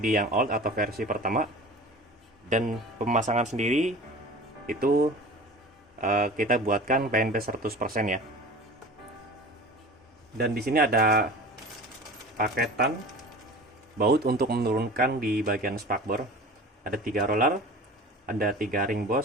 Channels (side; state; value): both; normal; correlation 0.38